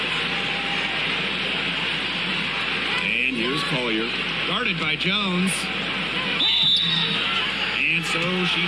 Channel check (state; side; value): noise; left; hum, 20 dB below the sound